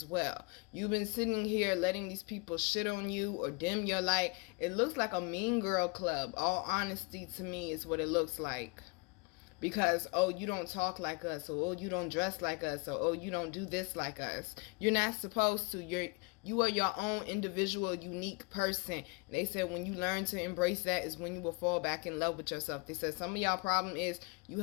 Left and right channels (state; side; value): quieter; right; 30.2 dB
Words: well. You've been sitting here letting these people shit on you or dim your light. It looks like a mean girl club. All honesty, to me, is what it looks like. Because, oh, you don't talk like us, or oh, you don't dress like us, or oh, you don't do this like us. You're not supposed to. You are your own individual, unique person. And they said when you learn to embrace that is when you will fall back in love with yourself. They said some of y'all problem is you